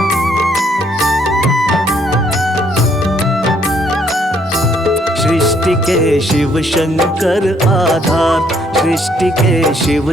सृष्टि के शिव शंकर आधार, सृष्टि के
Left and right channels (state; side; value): normal; both; correlation 0.67